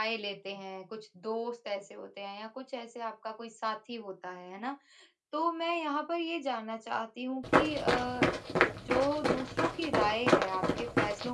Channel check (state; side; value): identical; both; correlation 1.00